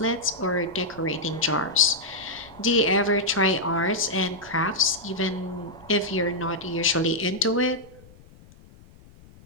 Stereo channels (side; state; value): left; noise; rumble, 24 dB below the sound